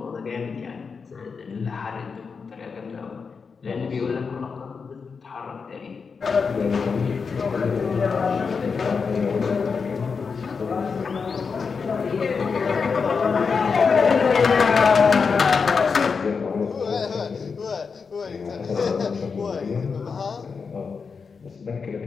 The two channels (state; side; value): quieter; right; 5.4 dB